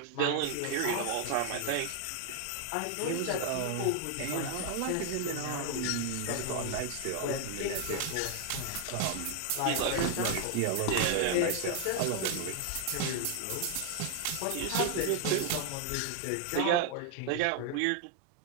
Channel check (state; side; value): different; both; correlation 0.00